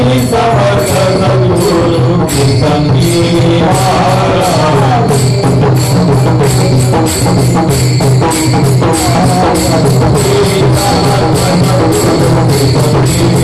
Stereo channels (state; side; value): identical; both; correlation 1.00